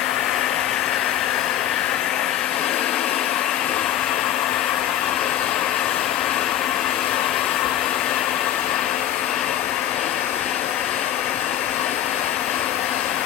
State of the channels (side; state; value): right; quieter; 11.8 dB